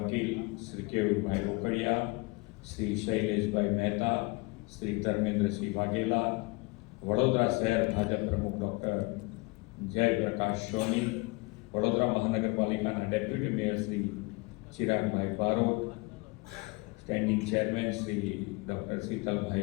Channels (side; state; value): right; quieter; 26.7 dB